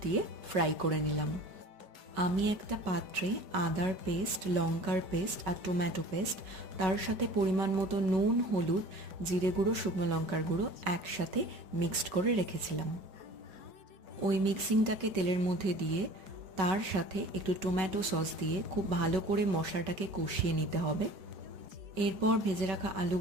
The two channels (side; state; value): left; late; 5.3 ms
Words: দিয়ে ফ্রাই করে নিলাম। আমি একটা পাত্রে আদার পেস্ট, লঙ্কার পেস্ট আর টমেটো পেস্ট, তার সাথে পরিমাণ মতো নুন, হলুদ, জিরে গুঁড়ো, শুকনো লঙ্কার গুঁড়ো একসাথে মিক্সড করে রেখেছিলাম। ওই মিক্সিংটাকে তেলের মধ্যে দিয়ে তার সাথে একটু টমেটো সস দিয়ে খুব ভালো করে মশলাটাকে কষিয়ে নিতে হবে। এরপর ভেজে রাখা